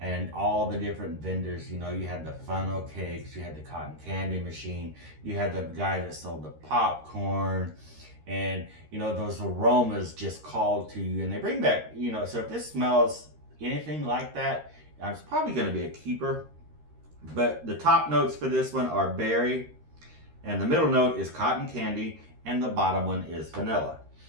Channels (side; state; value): left; late; 13 ms